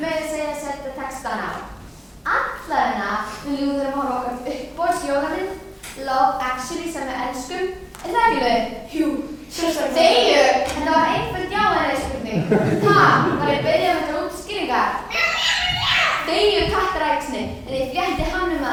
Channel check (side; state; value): both; identical; correlation 1.00